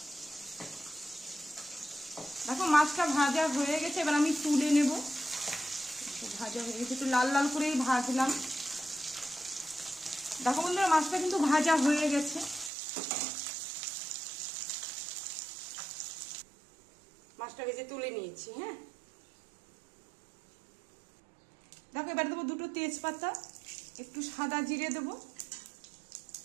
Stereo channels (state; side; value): drops out; left; at 12.7 s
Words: দেখো মাছটা ভাজা হয়ে গেছে, এবার আমি তুলে নেব। ভাজা হয়ে গেছে, একটু লাল লাল করেই ভাজলাম। দেখো বন্ধুরা, মাছটা কিন্তু ভাজা হয়ে গেছে। মাছটা ভেজে তুলে নিয়েছি। হ্যাঁ, দেখো এবার দেবো দুটো তেজপাতা, একটু সাদা জিরে দেবো।